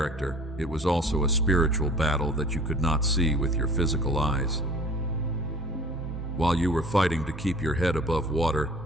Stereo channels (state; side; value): normal; both; correlation 0.47